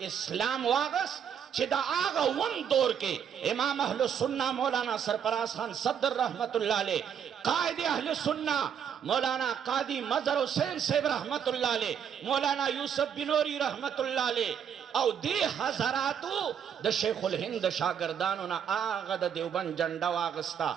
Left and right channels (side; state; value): left; quieter; 8.2 dB